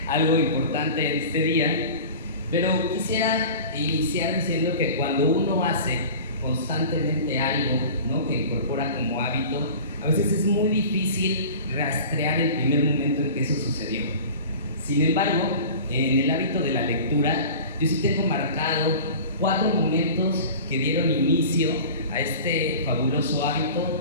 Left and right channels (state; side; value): inverted; both; correlation -0.38